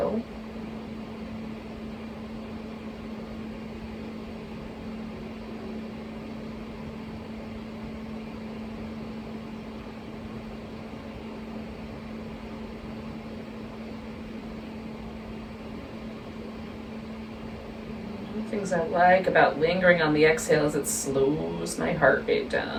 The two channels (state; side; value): identical; both; correlation 1.00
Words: Things I like about lingering on the exhale is it slows my heart rate down.